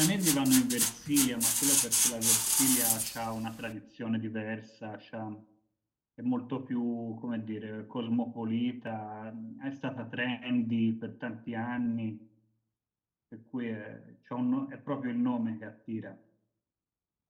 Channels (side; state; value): both; identical; correlation 1.00